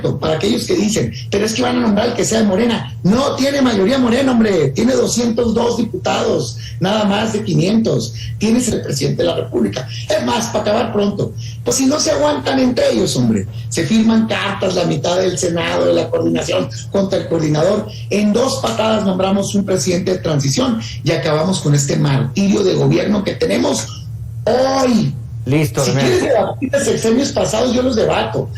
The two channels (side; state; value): both; identical; correlation 1.00